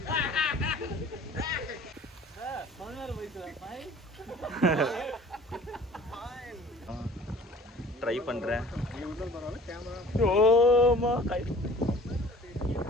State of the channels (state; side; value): normal; both; correlation 0.48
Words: ட்ரை பண்றேன். ஓமா கை